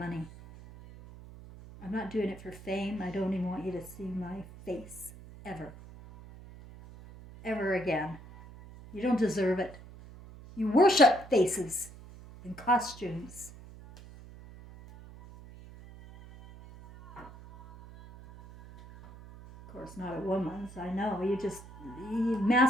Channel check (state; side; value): noise; right; hum, 18 dB below the sound